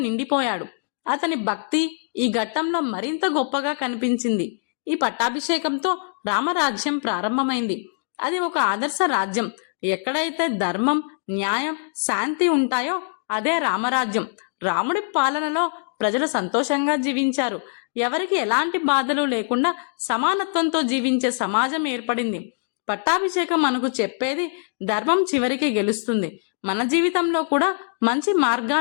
అతని భక్తి ఈ ఘట్టంలో మరింత గొప్పగా కనిపించింది. ఈ పట్టాభిషేకంతో రామరాజ్యం ప్రారంభమైంది. అది ఒక ఆదర్శ రాజ్యం. ఎక్కడైతే ధర్మం, న్యాయం, శాంతి ఉంటాయో అదే రామరాజ్యం. రాముడి పాలనలో ప్రజలు సంతోషంగా జీవించారు. ఎవరికి ఎలాంటి బాధలు లేకుండా సమానత్వంతో జీవించే సమాజం ఏర్పడింది. పట్టాభిషేకం మనకు చెప్పేది ధర్మం చివరికి గెలుస్తుంది. మన జీవితంలో కూడా మంచి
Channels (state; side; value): silent; right; digital silence